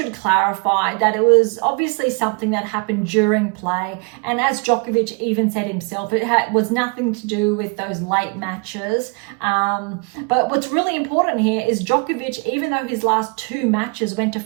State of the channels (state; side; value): quieter; left; 33.0 dB